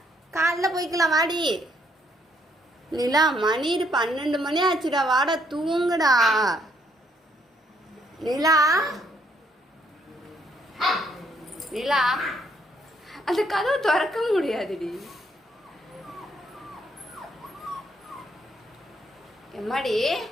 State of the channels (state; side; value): normal; both; correlation 0.70